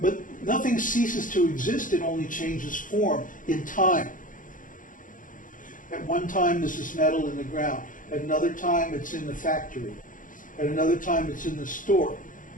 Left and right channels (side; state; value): right; late; 0.38 ms